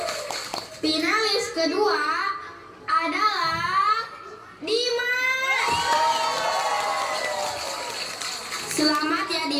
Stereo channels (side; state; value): both; identical; correlation 1.00